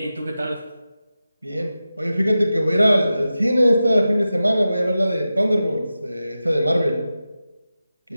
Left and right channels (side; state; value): both; inverted; correlation -0.93